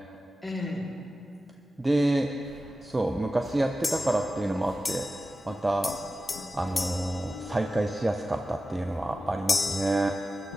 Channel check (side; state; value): both; normal; correlation 0.93